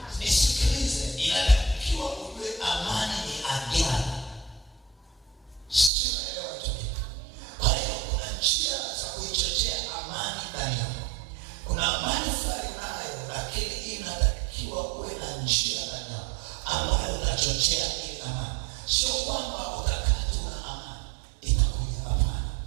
Nisikilize, inatakiwa ujue amani ni agano. Sio elewa tu. Kwa hiyo kuna njia za kuichochea amani ndani yako. Kuna amani fulani nayo, lakini inatakiwa uwe na njia ndani yako ambayo utachochea ile amani. Sio kwamba utakaa tu na amani itakuja, hapana.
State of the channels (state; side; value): drops out; left; at 5.9 s